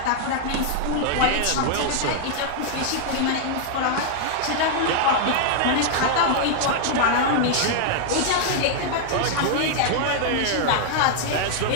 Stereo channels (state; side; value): different; both; correlation -0.01